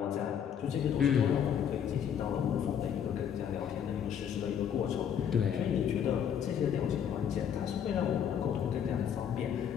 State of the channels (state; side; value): quieter; right; 8.5 dB